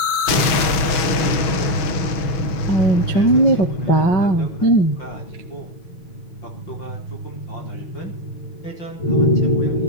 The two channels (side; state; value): right; late; 6.1 ms